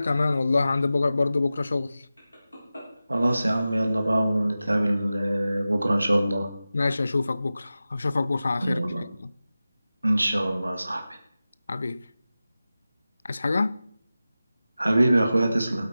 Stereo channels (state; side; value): inverted; both; correlation -0.94